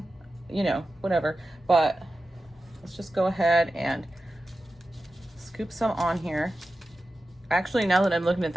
You know, whatever. But let's just go ahead and scoop some on here. Actually, now that I'm looking at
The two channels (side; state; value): both; normal; correlation 0.93